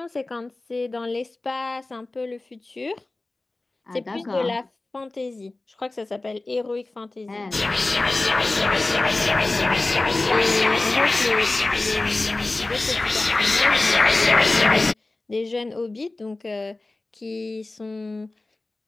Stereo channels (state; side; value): quieter; right; 3.1 dB